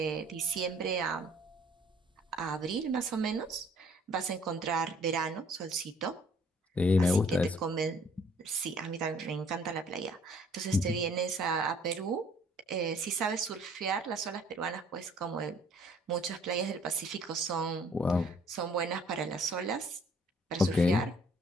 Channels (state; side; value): normal; both; correlation 0.58